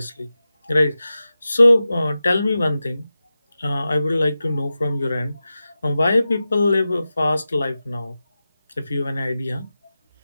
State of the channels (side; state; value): both; inverted; correlation -0.93